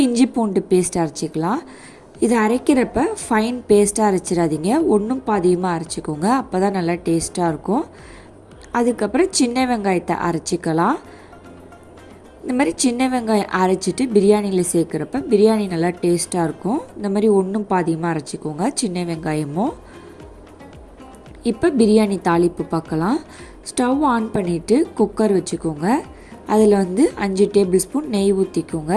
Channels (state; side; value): identical; both; correlation 1.00